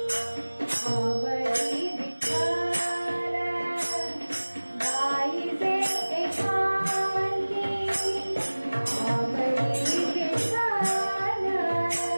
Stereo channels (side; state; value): both; inverted; correlation -1.00